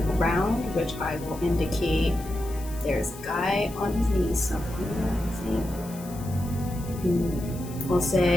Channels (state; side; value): noise; left; hiss, 17 dB below the sound